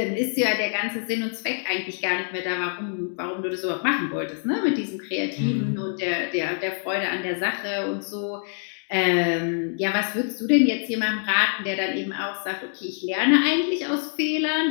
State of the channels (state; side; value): silent; right; 58 dB below the other